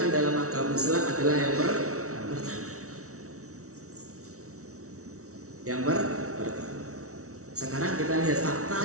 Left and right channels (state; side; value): late; left; 0.64 ms